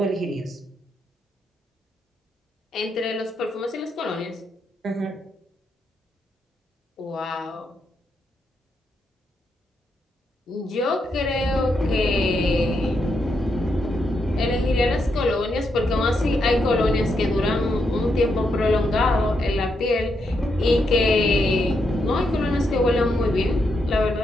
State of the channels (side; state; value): both; normal; correlation 0.81